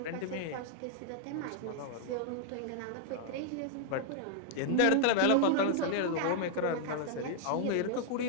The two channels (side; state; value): both; different; correlation 0.00